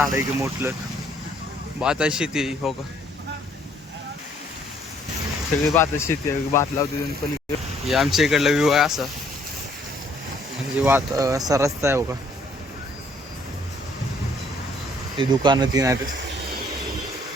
आहे की मोठलं. भाताची शेती आहे. हो का, सगळी भाताची शेती आहे. भात लावते पण. हे आमच्या इकडला व्ह्यू आहे असा, म्हणजे असा रस्ता आहे. हो का, ते दुकानं तीन आहेत.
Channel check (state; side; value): normal; both; correlation 0.64